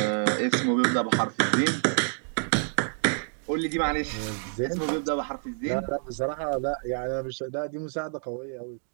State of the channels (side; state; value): left; silent; 60 dB below the other